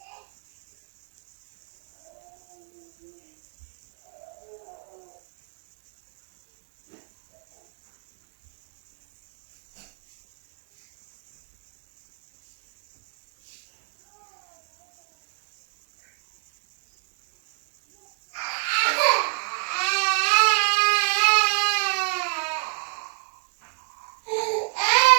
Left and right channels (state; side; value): silent; left; digital silence